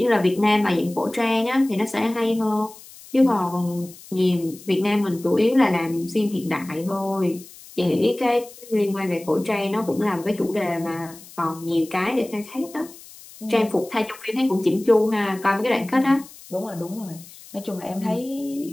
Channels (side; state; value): left; noise; hiss, 19 dB below the sound